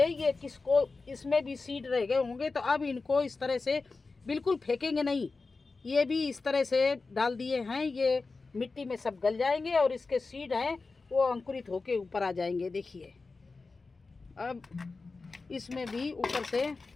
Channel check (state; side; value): quieter; right; 4.0 dB